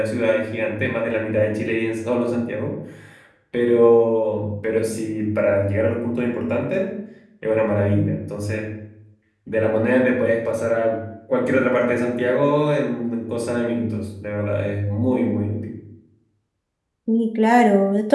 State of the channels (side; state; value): both; identical; correlation 1.00